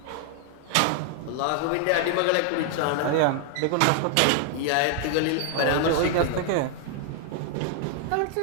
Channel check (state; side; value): different; both; correlation 0.00